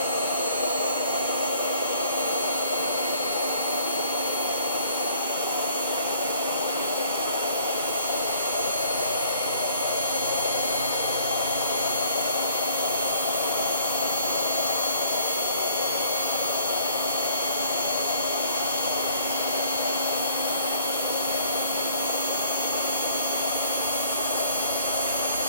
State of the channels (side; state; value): both; inverted; correlation -0.58